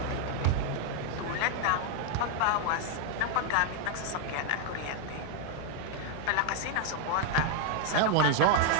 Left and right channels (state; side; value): different; both; correlation 0.00